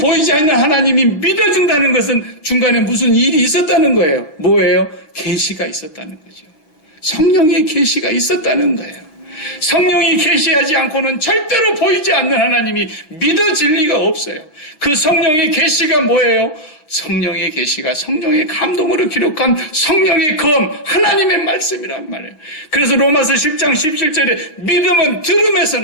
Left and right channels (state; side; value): late; right; 6.3 ms